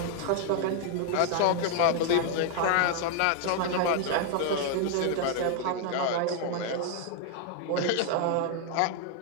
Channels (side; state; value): both; different; correlation 0.00